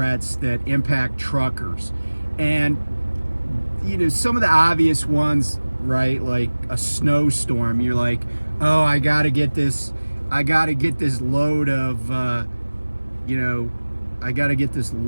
that impact truckers. And some of the obvious ones, right? Like a snowstorm. You're like, oh, I gotta get this load of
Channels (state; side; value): inverted; both; correlation -1.00